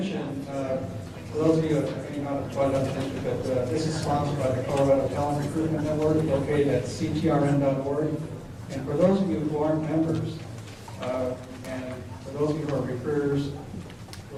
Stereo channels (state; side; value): identical; both; correlation 1.00